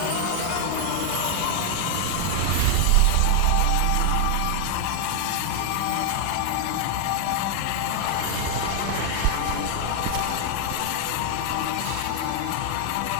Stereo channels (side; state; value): both; different; correlation 0.00